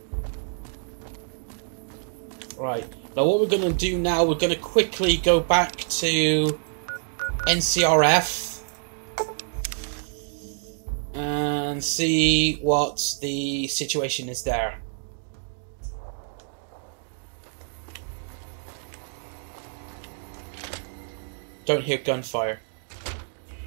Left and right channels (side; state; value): left; silent; digital silence